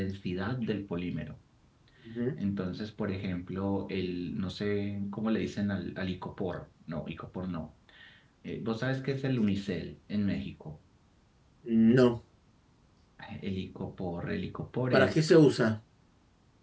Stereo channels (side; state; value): both; identical; correlation 1.00